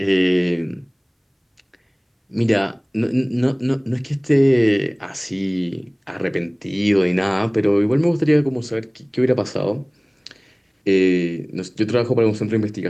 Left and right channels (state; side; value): identical; both; correlation 1.00